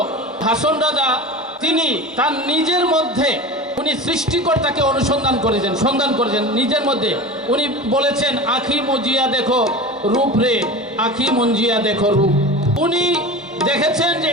হাসন রাজা তিনি তার নিজের মধ্যে উনি সৃষ্টিকর্তাকে অনুসন্ধান করেছেন, সন্ধান করেছেন নিজের মধ্যে। উনি বলেছেন আখি মজিয়া দেখো রূপ রে, আখি মঞ্জিয়া দেখো রূপ। উনি দেখেছেন যে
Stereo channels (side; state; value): both; normal; correlation 0.31